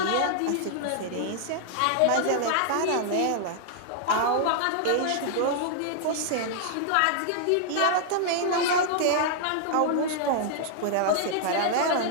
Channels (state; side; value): different; both; correlation -0.01